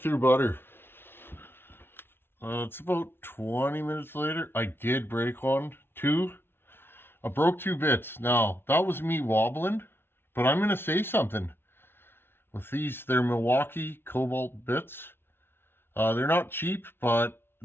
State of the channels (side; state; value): right; late; 0.11 ms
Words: through butter. It's about 20 minutes later. I did break one. 2. I broke 2 bits. Now, that was me wobbling, but I'm going to say something. With these, they're Milwaukee cobalt bits. They're not cheap, but